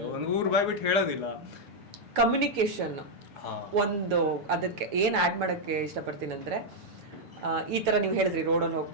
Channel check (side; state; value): left; late; 6.9 ms